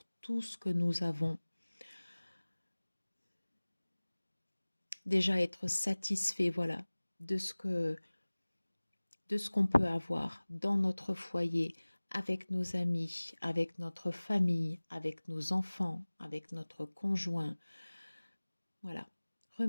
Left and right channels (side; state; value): both; inverted; correlation -1.00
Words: tout ce que nous avons. Déjà être satisfait, voilà, de ce qu'on peut avoir dans notre foyer, avec nos amis, avec notre famille, avec nos enfants, avec notre conjoint. Voilà.